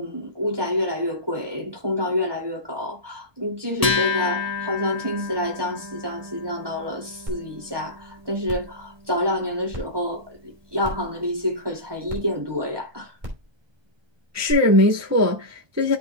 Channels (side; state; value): left; late; 1.3 ms